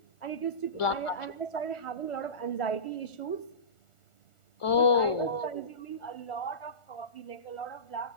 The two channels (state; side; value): late; right; 1.4 ms